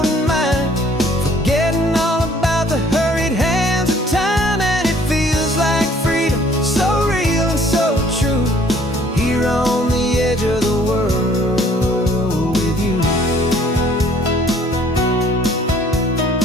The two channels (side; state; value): both; normal; correlation 0.58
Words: mine, forgetting all about the hurried hands of time. And it feels like freedom, so real and so true, here on the edge of the world with you.